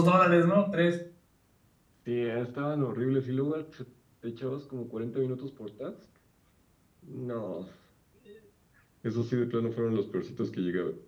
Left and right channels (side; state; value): both; identical; correlation 1.00